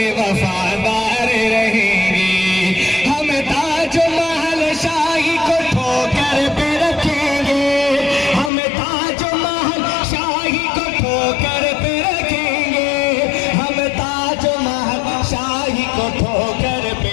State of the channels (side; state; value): right; drops out; at 8.5 s